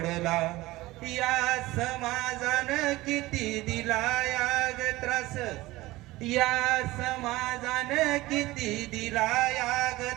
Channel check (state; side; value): quieter; left; 18.8 dB